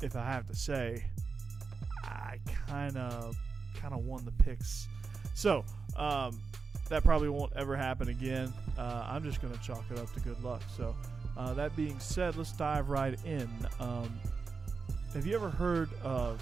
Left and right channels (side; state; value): left; quieter; 4.8 dB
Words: if I have to say, I kind of won the picks. So, that probably won't ever happen again. I'm just going to chalk it up to good luck. So, that being said, let's dive right in. Have you ever heard